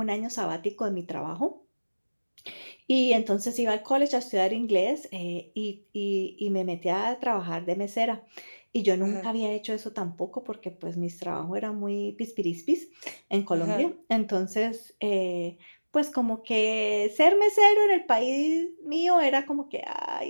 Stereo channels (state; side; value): inverted; both; correlation -1.00